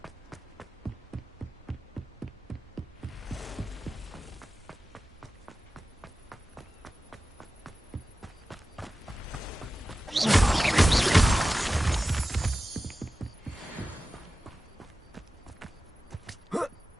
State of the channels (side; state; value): both; normal; correlation 0.94